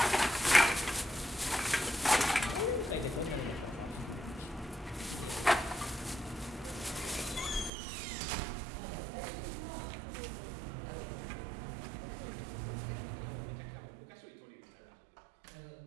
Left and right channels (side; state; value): left; drops out; at 7.7 s